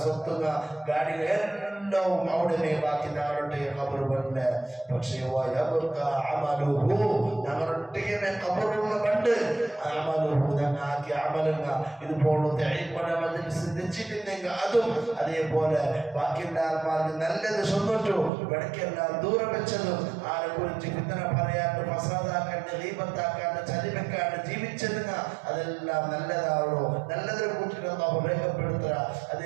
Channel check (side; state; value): left; drops out; at 18.3 s